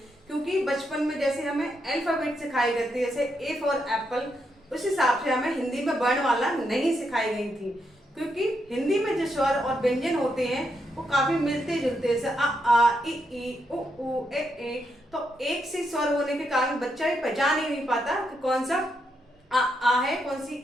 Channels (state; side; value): normal; both; correlation 0.81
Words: क्योंकि बचपन में जैसे हमें अल्फाबेट सिखाई गई थी, जैसे ए फॉर एप्पल, उस हिसाब से हमें हिंदी में वर्णमाला नहीं सिखाई गई थी। क्योंकि हिंदी में जो स्वर और व्यंजन होते हैं वो काफी मिलते जुलते हैं, आ ई उ ए। तो एक से स्वर होने के कारण बच्चा ही पहचान ही नहीं पाता कि कौन सा आ है, कौन सी